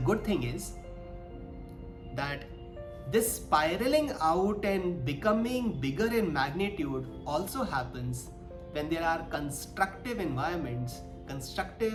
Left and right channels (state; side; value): identical; both; correlation 1.00